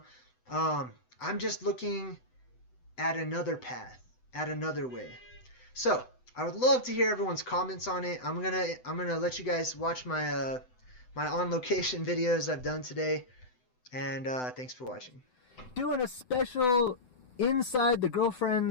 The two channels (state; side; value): late; right; 7.9 ms